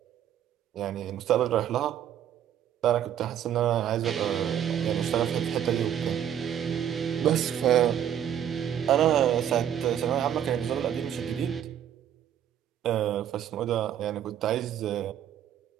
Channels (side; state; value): left; quieter; 10.0 dB